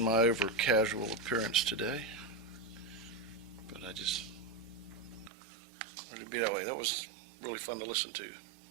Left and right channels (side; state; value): left; drops out; at 5.3 s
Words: my over casual appearance today, but I just wanted to be that way. That was really fun to listen to.